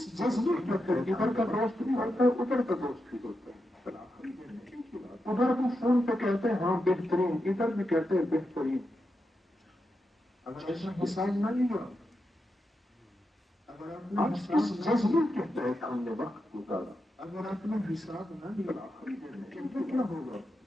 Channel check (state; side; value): normal; both; correlation 0.87